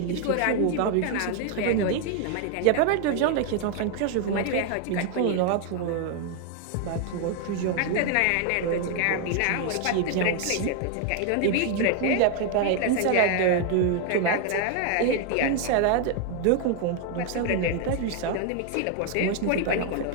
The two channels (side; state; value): both; different; correlation 0.00